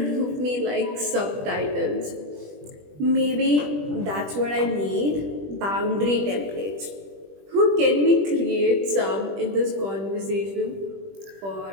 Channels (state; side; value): late; left; 20 ms